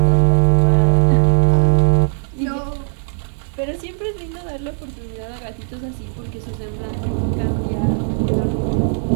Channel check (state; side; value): silent; left; digital silence